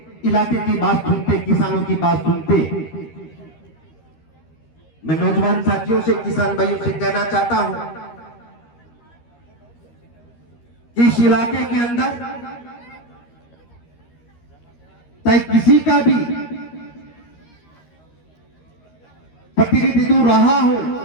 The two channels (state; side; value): late; right; 13 ms